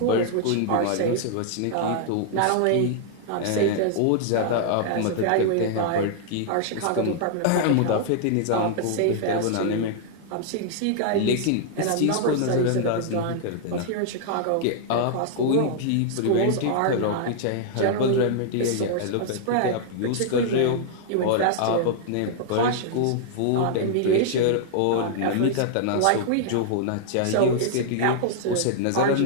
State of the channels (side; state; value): both; different; correlation -0.01